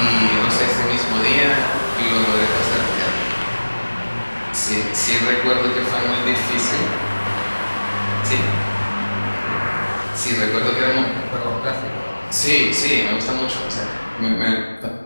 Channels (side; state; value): both; inverted; correlation -1.00